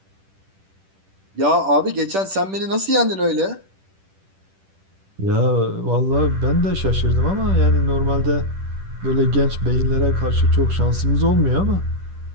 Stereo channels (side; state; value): left; late; 10 ms